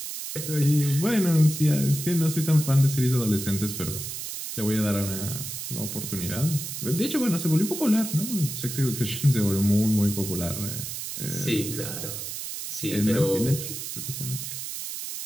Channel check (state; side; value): noise; right; hiss, 7 dB below the sound